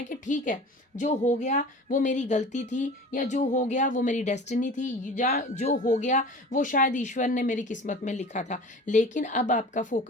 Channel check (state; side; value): normal; both; correlation 0.39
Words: कि ठीक है, जो हो गया वो मेरी गलती थी, या जो हो गया वो मेरी डेस्टिनी थी, या जो हो गया वो शायद ईश्वर ने मेरी किस्मत में लिखा था। लेकिन अब आपका